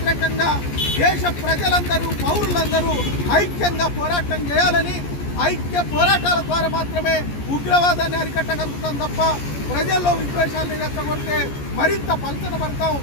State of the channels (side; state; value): right; late; 14 ms